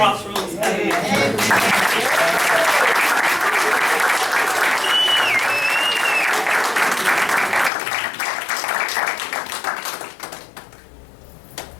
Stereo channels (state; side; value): drops out; right; at 7.7 s